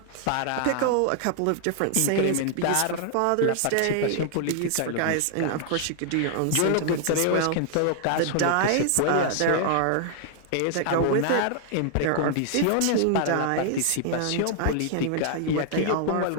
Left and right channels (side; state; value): both; different; correlation 0.00